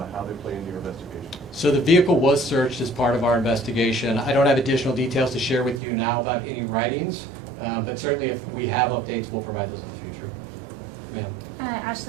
how they play into your investigation? So the vehicle was searched as part of our investigation. I don't have additional details to share with you now about any writings, but certainly if we have updates, we'll provide those in the future. Ma'am.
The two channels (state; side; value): drops out; left; at 5.8 s